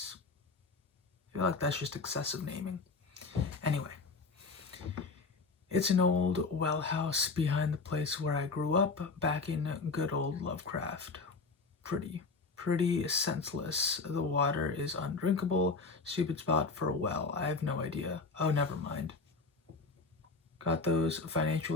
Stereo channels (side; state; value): right; quieter; 4.2 dB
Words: I feel like that's just excessive naming. Anyway, it's an old well house behind the place where I grew up back in good old Lovecraft. Pretty senseless. The water is undrinkable. Stupid spot for a well. I have no idea. Oh, never mind. Got those